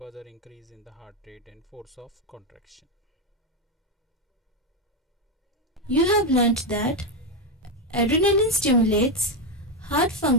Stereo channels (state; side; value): normal; both; correlation 0.07